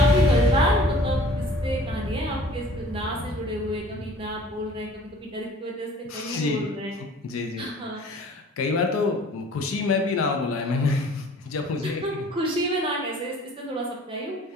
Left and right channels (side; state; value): both; normal; correlation 0.50